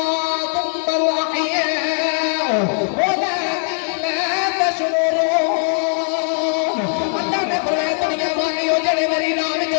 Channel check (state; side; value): silent; right; 56 dB below the other